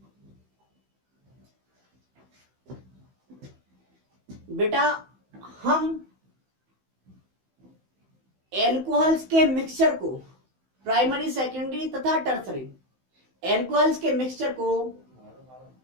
बेटा हम एल्कोहल्स के मिक्सचर को प्राइमरी, सेकेंडरी तथा टर्सरी एल्कोहल्स के मिक्सचर को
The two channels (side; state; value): left; late; 15 ms